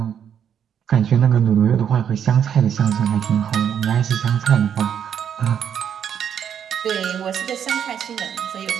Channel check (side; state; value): left; quieter; 8.6 dB